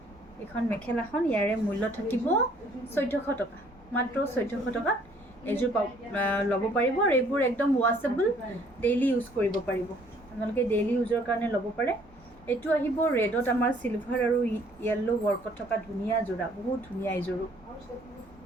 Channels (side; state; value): both; normal; correlation 0.60